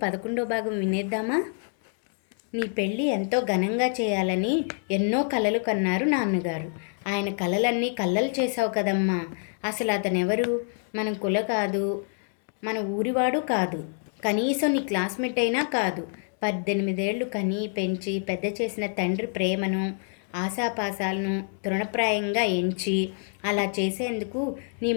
11వ భాగం వినేద్దామా? నీ పెళ్ళి ఎంతో ఘనంగా చేయాలని ఎన్నో కలలు కన్నారు నాన్నగారు. ఆయన కలలన్నీ కళ్ళలు చేసావు కదమ్మా. అసలు అతనెవరు? మన కుల కాదు, మన ఊరివాడు కాదు, కనీసం నీ క్లాస్మేట్ అయినా కాదు. 18 ఏళ్ళు కని పెంచి పెద్ద చేసిన తండ్రి ప్రేమను, ఆశాపాశాలను తృణప్రాయంగా ఎంచి అలా చేసేందుకు నీ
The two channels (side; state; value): right; silent; 60 dB below the other